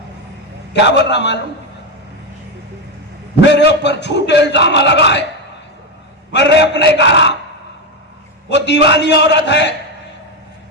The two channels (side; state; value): both; normal; correlation 0.10